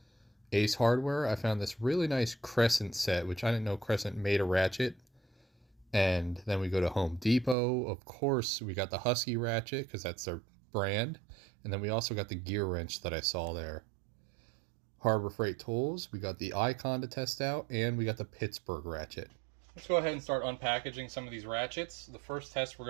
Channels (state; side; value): drops out; left; at 7.6 s